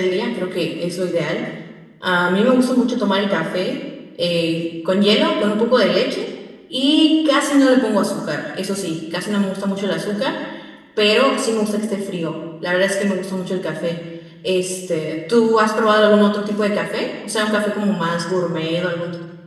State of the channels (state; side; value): identical; both; correlation 1.00